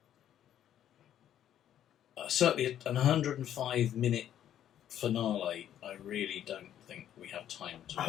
Certainly an 105-minute finale, I really don't think we have time to...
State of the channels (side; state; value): right; quieter; 10.8 dB